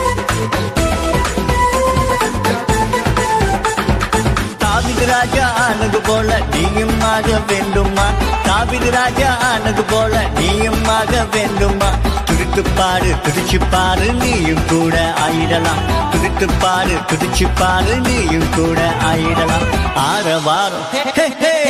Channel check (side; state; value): both; identical; correlation 1.00